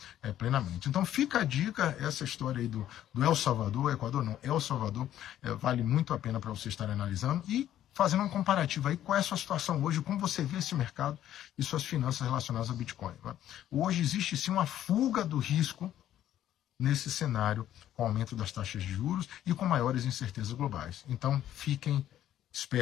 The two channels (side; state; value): right; quieter; 11.9 dB